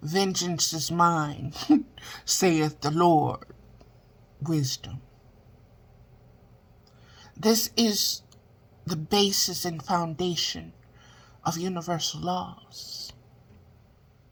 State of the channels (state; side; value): identical; both; correlation 1.00